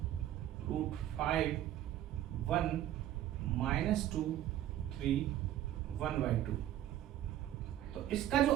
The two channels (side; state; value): left; quieter; 12.5 dB